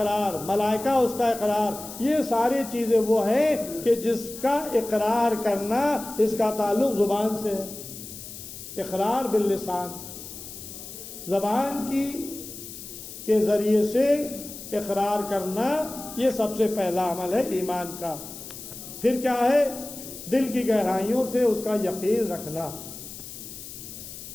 ملائکہ اس کا اقرار۔ یہ ساری چیزیں وہ ہیں کہ جس کا اقرار کرنا، اس کا تعلق زبان سے ہے۔ اقرار باللسان، زبان کے ذریعے سے اقرار کرنا، یہ سب سے پہلا عمل ہے ایمان کا۔ پھر کیا ہے؟ دل کی گہرائیوں سے اس کا یقین رکھنا۔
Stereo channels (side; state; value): left; noise; hiss, 12 dB below the sound